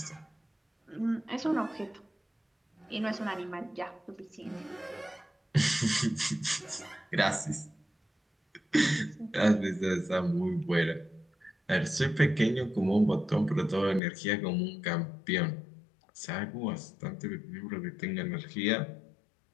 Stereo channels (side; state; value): right; drops out; at 14.0 s